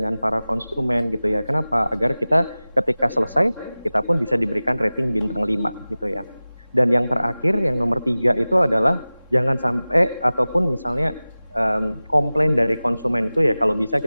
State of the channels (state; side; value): inverted; both; correlation -0.97